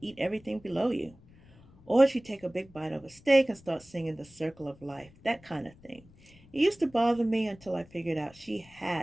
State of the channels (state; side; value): noise; left; rumble, 25 dB below the sound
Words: eat everything below you? Or she'd take a big bite of a steak and start singing The Circle of Life, that kind of thing. It used to bother me until I figured out she